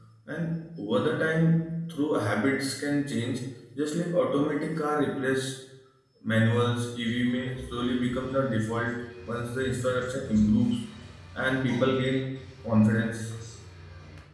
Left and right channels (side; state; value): both; identical; correlation 1.00